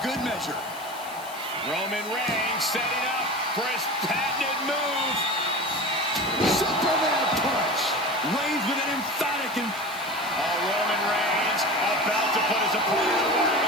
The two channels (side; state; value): left; noise; hiss, 17 dB below the sound